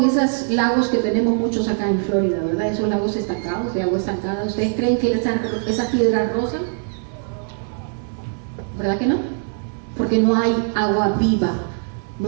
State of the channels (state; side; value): silent; left; digital silence